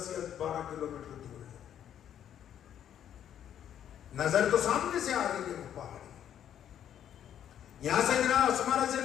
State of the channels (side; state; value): right; quieter; 10.0 dB